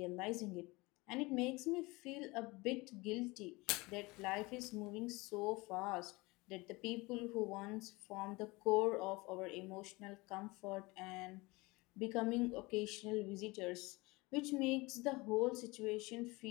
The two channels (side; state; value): right; quieter; 23.6 dB